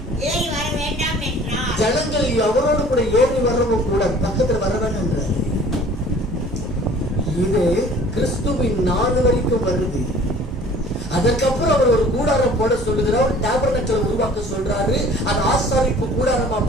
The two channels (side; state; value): both; normal; correlation 0.50